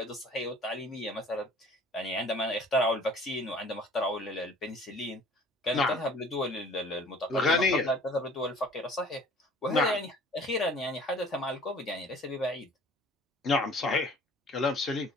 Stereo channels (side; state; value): both; normal; correlation 0.50